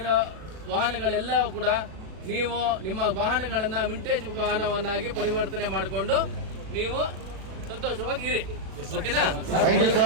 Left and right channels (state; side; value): late; left; 37 ms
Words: ವಾಹನಗಳೆಲ್ಲ ಕೂಡ ನೀವು ನಿಮ್ಮ ವಾಹನಗಳನ್ನ ವಿಂಟೇಜ್ ವಾಹನವನ್ನಾಗಿ ಪರಿವರ್ತನೆ ಮಾಡಿಕೊಂಡು ನೀವು ಸಂತೋಷವಾಗಿ ಇರಿ. ಓಕೆನಾ?